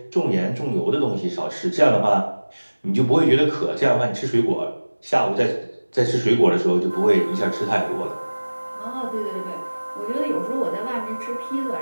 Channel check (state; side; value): inverted; both; correlation -1.00